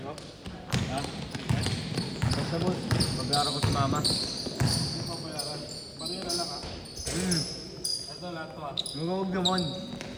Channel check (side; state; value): both; identical; correlation 1.00